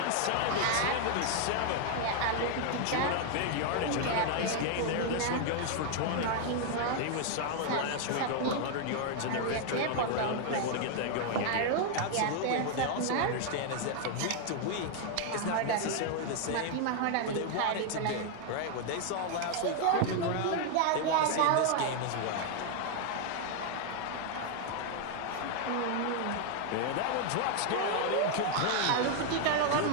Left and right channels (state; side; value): different; both; correlation 0.00